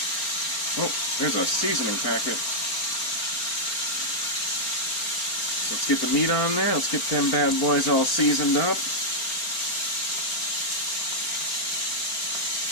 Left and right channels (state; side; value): late; right; 4.4 ms